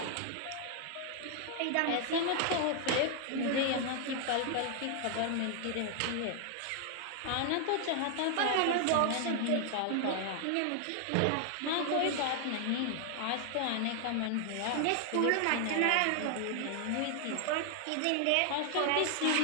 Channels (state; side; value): different; both; correlation 0.00